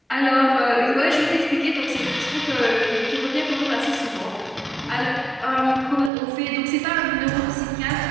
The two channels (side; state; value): left; drops out; at 6.1 s